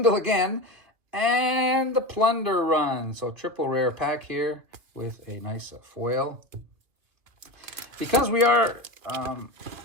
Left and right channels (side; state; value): left; late; 2.3 ms